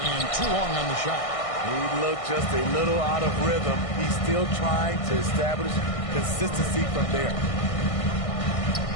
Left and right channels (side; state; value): right; late; 1.6 ms